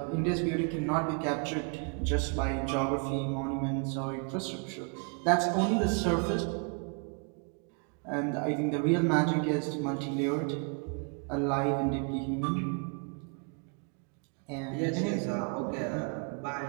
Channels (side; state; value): left; quieter; 38.8 dB